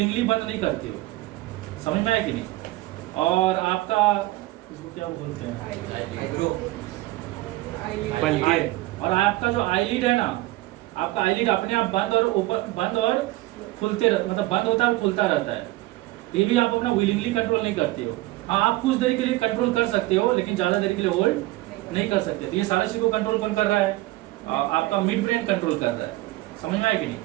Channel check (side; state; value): left; quieter; 18.7 dB